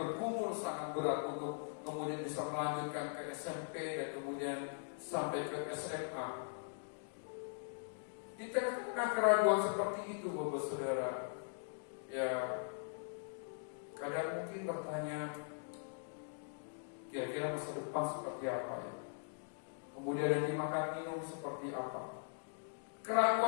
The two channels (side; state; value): right; silent; digital silence